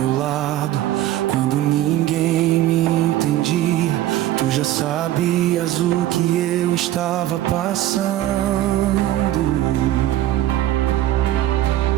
lado quando ninguém me entendia. Tu já sabias o que eu estava passando.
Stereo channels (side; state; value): left; quieter; 13.8 dB